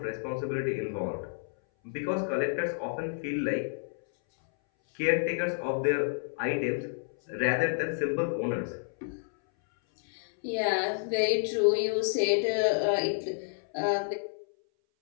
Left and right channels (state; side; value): silent; right; 58 dB below the other